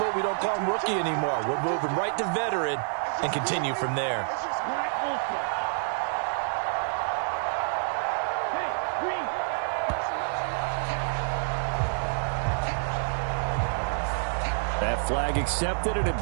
we don't call him rookie anymore. We'll move him right to veteran and continue from there. That flag accepted, and it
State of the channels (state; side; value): silent; left; digital silence